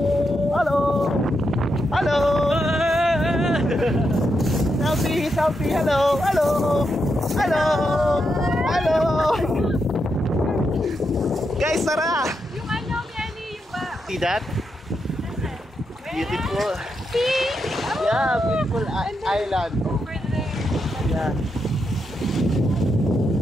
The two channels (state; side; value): normal; both; correlation 0.83